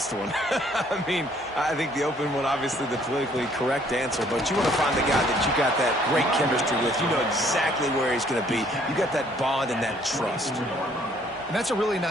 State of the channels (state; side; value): normal; both; correlation 0.62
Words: one. I mean, I think the open one, obviously the politically correct answer, but you want to find the guy that you got that great chemistry with. You know exactly where he's going to be. You got that bond and that trust. And that's a really